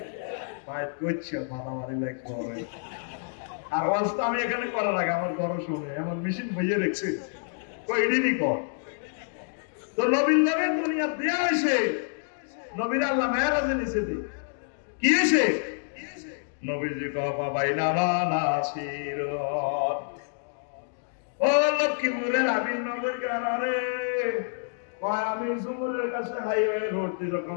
বাইট করছে মারামারি লাগবে। আর ওয়াজ তো আমি এখানে করার আগে আমার গরম শুনে আমার মেশিন বইয়ে রেখেছে কইডিনি কর। তো নবীর নামে দুনিয়া দেয়া হয়েছে, নবীর আল্লাহ মেরাজে নিচে দি কি হয়েছে? নবীজি কথা বাইনা নাসির ও লক্ষ্মীপুরের আমির নগর গানারে কয় আমি জুমুরের কাছে হাইওয়ে রোড দিয়ে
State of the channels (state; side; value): silent; right; digital silence